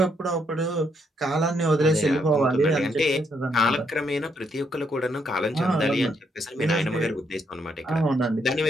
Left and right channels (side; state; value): both; normal; correlation 0.75